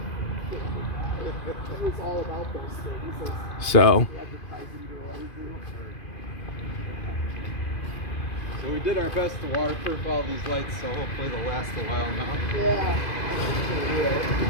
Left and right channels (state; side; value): late; right; 2.5 ms